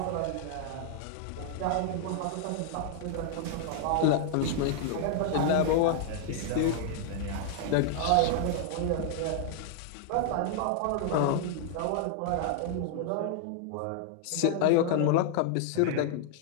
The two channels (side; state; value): both; different; correlation -0.01